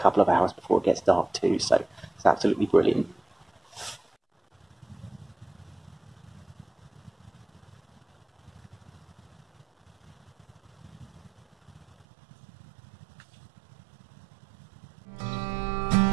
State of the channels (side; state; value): left; drops out; at 12.1 s